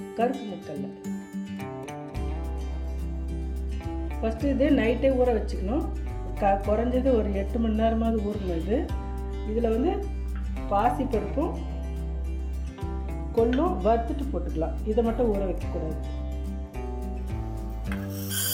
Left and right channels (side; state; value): both; identical; correlation 1.00